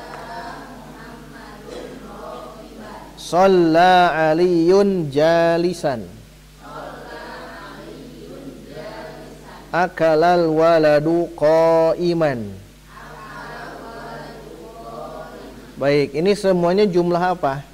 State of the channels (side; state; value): both; identical; correlation 1.00